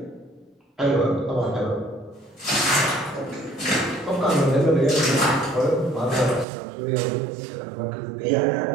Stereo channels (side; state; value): left; drops out; at 6.5 s